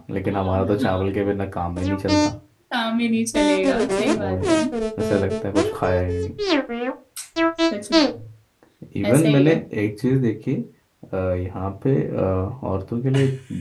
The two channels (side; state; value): both; identical; correlation 1.00